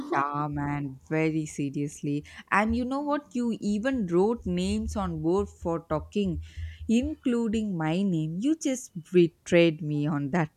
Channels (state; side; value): identical; both; correlation 1.00